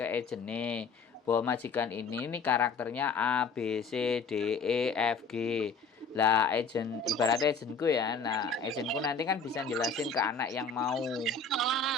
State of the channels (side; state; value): right; quieter; 4.6 dB